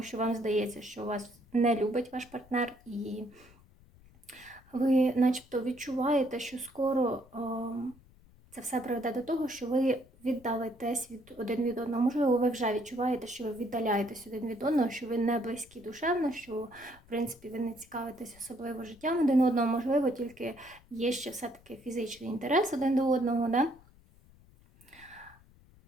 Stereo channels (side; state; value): left; noise; rumble, 26 dB below the sound